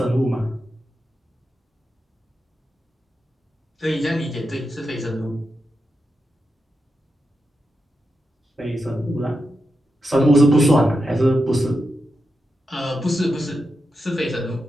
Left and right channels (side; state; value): both; normal; correlation 0.88